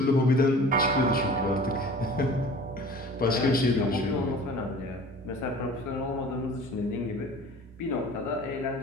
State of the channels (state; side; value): normal; both; correlation 0.44